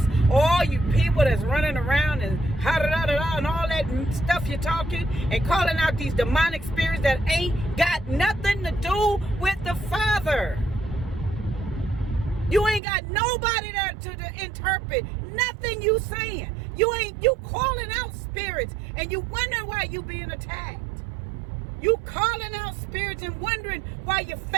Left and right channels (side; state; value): left; drops out; at 12.8 s